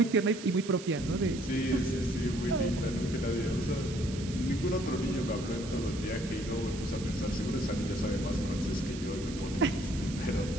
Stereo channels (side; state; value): right; noise; hiss, 13 dB below the sound